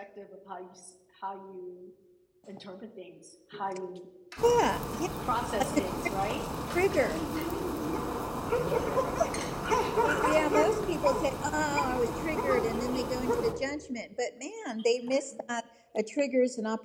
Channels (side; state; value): both; identical; correlation 1.00